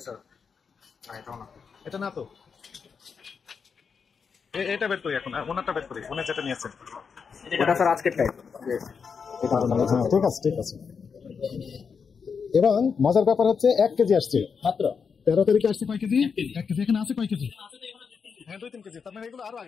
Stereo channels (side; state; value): right; quieter; 6.0 dB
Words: স্যার, এটাও না। এটা না তো, এটা বের করি এখন। ওনারটা বের করি, উনি যেটা নিয়েছেন। এটা স্যার আজকের টাইপ। এটা হ্যাঁ, ঠিক আছে, ঠিক আছে। এবং মজার ব্যাপার হচ্ছে 1 কেজি আসছে। মাত্র 13 তারিখে আসছে কয় কেজি? 1 কেজি। এখানে আছে কয় কেজি? হ্যাঁ 2-3 কেজি। তার মানে এগুলো আরো